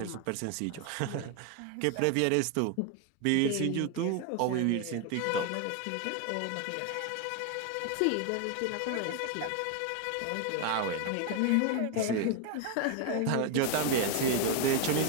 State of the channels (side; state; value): both; different; correlation 0.01